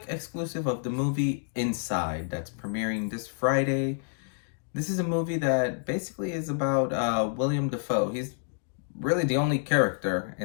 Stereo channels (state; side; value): silent; right; digital silence